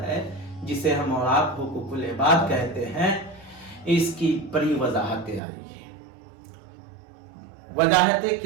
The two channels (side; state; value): left; drops out; at 5.4 s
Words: جسے ہم اور آپ حقوق العباد کہتے ہیں، اس کی بڑی وضاحتیں آ رہی ہیں۔ وضاحتیں